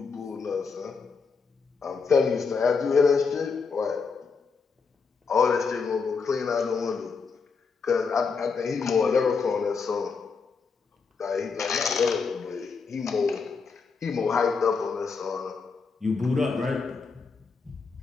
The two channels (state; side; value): quieter; right; 5.1 dB